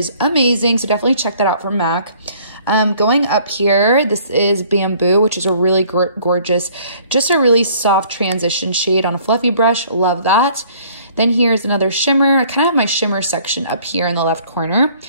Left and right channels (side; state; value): both; inverted; correlation -0.57